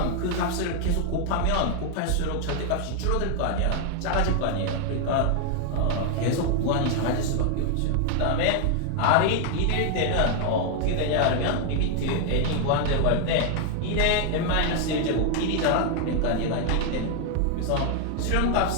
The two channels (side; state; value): both; different; correlation 0.00